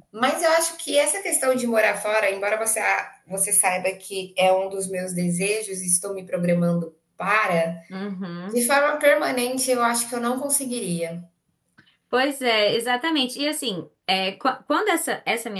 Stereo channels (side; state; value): both; identical; correlation 1.00